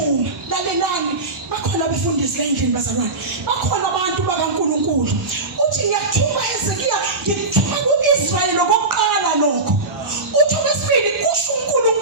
lalelani, bakhona abefundisi la endlini bazalwane, bakhona abantu bakaNkulunkulu. Uthi ngiyakuthuma Hezekiya, ngikuthuma kuIsrayeli lokuqala lokho. Uthi okwesibili kusho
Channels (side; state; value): left; quieter; 3.2 dB